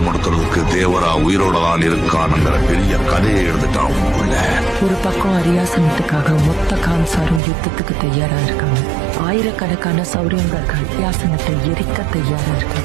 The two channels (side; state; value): left; drops out; at 7.4 s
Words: தேவரா உயிரோட தான் இருக்கானுங்கிற பெரிய கதையை எழுதிட்டான். ஒரு பக்கம் அரியாசனத்துக்காக மொத்த கான்சாரும் யுத்தத்துக்கு தயாரா இருக்காங்க. ஆயிரக்கணக்கான சௌரியங்கர்கள் அரியாசனத்தை எரிக்க தயாரா